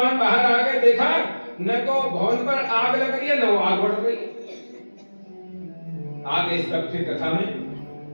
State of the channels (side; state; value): both; inverted; correlation -1.00